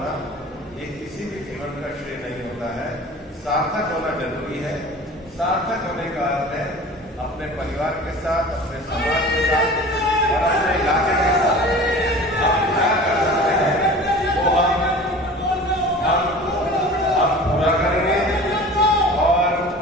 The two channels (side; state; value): both; normal; correlation 0.40